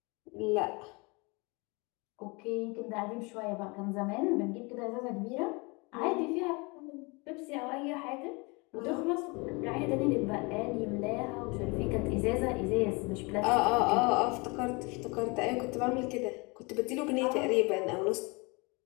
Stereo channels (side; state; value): right; quieter; 28.2 dB